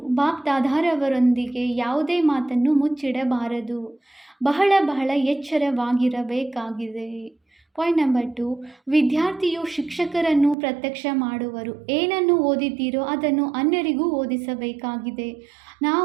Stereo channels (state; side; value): drops out; left; at 10.6 s